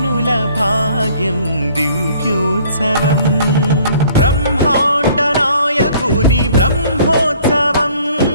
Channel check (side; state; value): both; inverted; correlation -0.57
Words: భాగ్యం దివ్యోత్సవం బ్రహ్మాండ నాయకుని బ్రహ్మోత్సవం